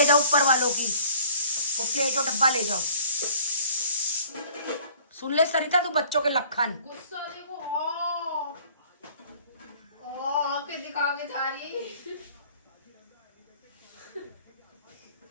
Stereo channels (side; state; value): both; inverted; correlation -0.54